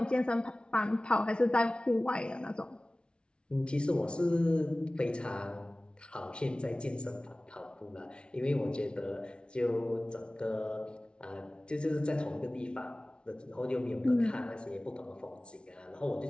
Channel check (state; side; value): late; right; 0.057 ms